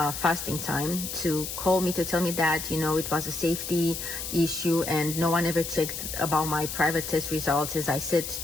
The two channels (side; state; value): left; noise; hiss, 6 dB below the sound